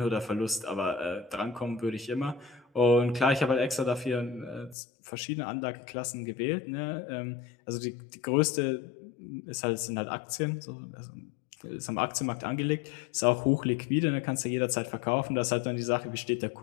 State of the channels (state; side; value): drops out; right; at 4.8 s